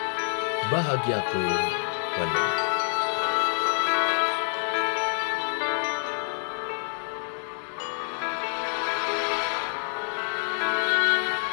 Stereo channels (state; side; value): silent; right; 60 dB below the other